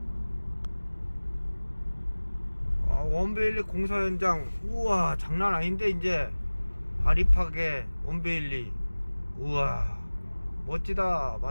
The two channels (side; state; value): both; inverted; correlation -1.00